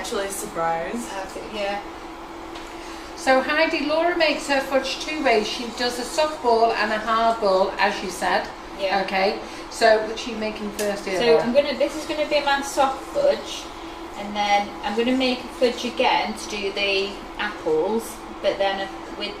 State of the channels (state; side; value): identical; both; correlation 1.00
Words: surprised. Yeah. So Heidi, Laura makes her fudge 2 ways. She does a soft ball and a hard ball, as you said. Yeah. Okay. So which are you making first here, So Laura? this is gonna be my soft fudge, and then I'm gonna make a fudge again to do the apples, but then with